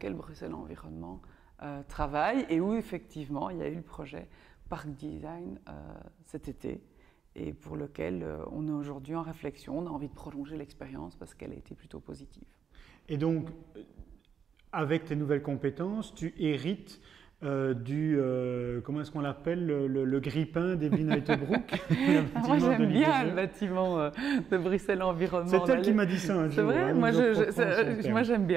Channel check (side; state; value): left; quieter; 7.3 dB